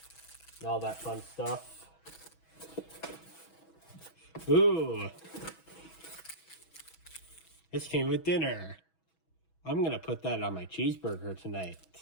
and all that fun stuff. Ooh, this came with dinner. I'm gonna put that on my cheeseburger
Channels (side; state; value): right; late; 6.2 ms